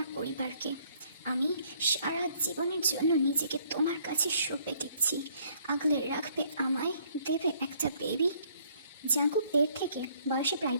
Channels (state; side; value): inverted; both; correlation -0.64